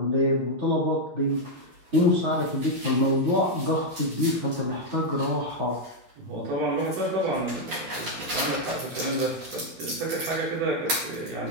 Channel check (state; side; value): late; left; 11 ms